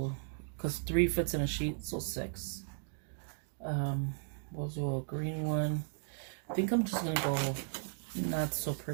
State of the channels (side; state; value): left; silent; digital silence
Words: because 3 fits in a sheet, so 6. We'll do a green one. I think I'm just going to go not so